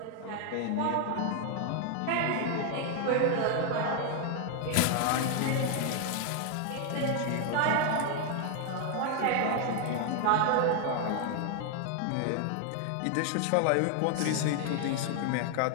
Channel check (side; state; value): both; different; correlation 0.01